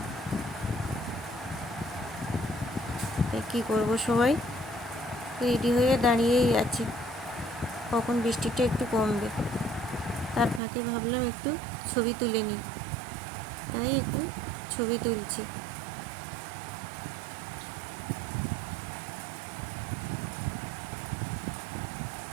কী করবো, সবাই রেডি হয়ে দাঁড়িয়েই আছে কখন বৃষ্টিটা একটু কমবে। তার ফাঁকে ভাবলাম একটু ছবি তুলে নিই, তাই একটু ছবি তুলছি।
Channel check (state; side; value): drops out; left; at 10.6 s